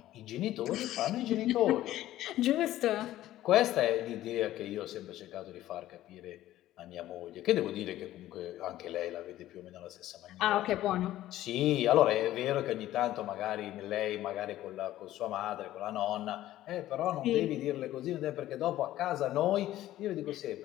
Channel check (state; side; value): quieter; right; 14.2 dB